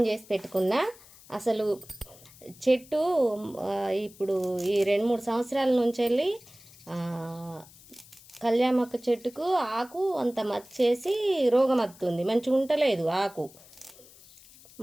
చేసి పెట్టుకున్నా. అసలు చెట్టు ఇప్పుడు ఈ 2-3 సంవత్సరాల నుంచి వెళ్ళి కళ్యామాకు చెట్టుకు ఆకు అంత మచ్చేసి రోగం వస్తుంది, మంచిగా ఉండలేదు ఆకు.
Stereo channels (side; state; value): left; noise; hiss, 23 dB below the sound